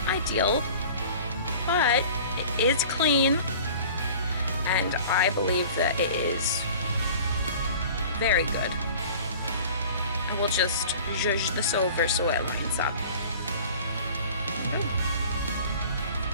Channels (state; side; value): inverted; both; correlation -0.44